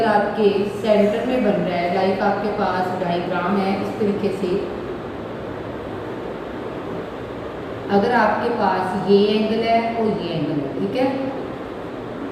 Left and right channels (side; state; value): both; identical; correlation 1.00